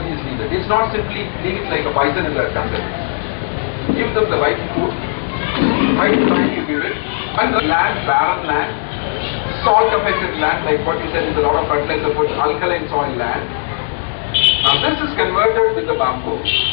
is needed. It's not simply leave it like a bison in the jungle. Give them the right food, right time you give it, and the land, barren land, salt affected land, like what you said is a lot of fertilizer put, alkaline soil land. Now this is converted with the bamboo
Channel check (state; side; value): silent; right; 62 dB below the other